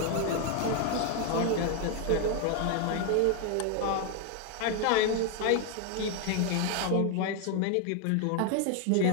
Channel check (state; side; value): different; both; correlation 0.01